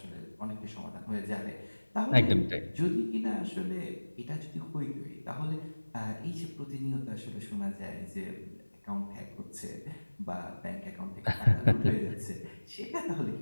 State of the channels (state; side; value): inverted; both; correlation -1.00